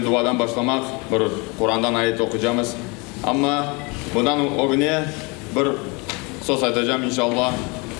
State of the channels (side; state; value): right; quieter; 28.9 dB